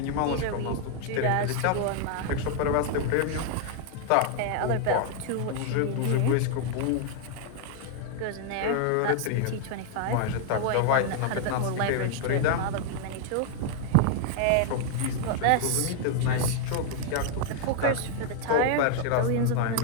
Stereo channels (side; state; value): both; different; correlation 0.00